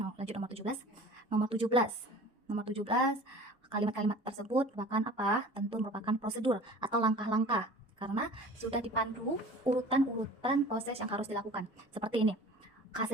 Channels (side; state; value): both; normal; correlation 0.43